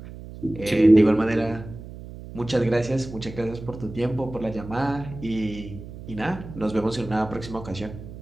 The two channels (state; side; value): noise; right; hum, 13 dB below the sound